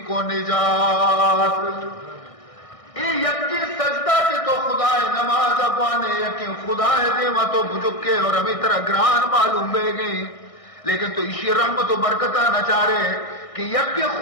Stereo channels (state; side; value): late; right; 1.6 ms